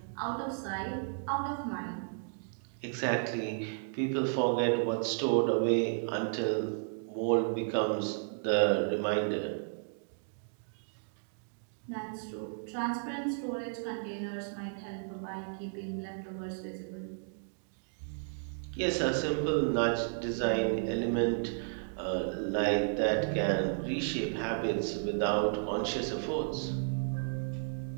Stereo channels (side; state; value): left; silent; digital silence